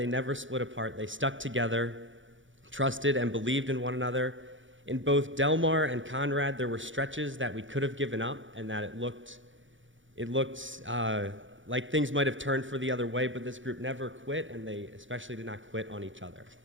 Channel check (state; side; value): late; left; 0.56 ms